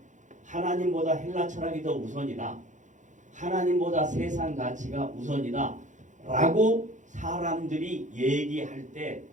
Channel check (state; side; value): late; left; 0.36 ms